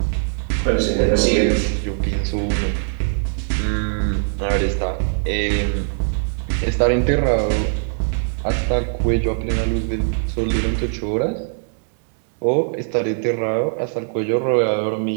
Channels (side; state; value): left; silent; digital silence